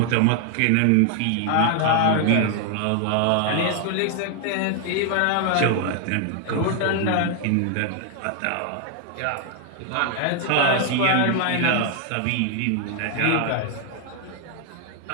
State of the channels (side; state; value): both; different; correlation 0.00